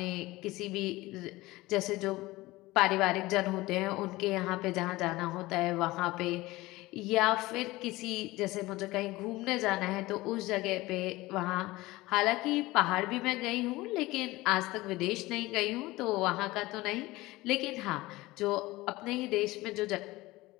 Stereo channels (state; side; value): quieter; right; 19.6 dB